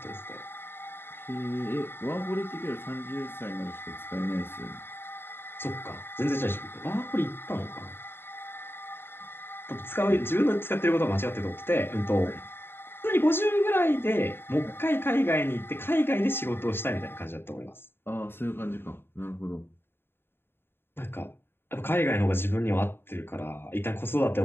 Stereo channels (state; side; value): late; right; 0.11 ms